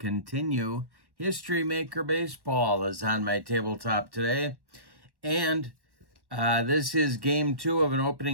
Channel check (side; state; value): left; late; 1.1 ms